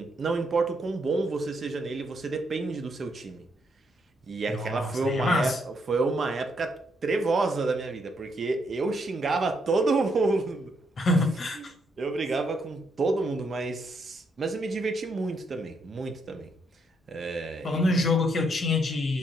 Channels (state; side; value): normal; both; correlation 0.76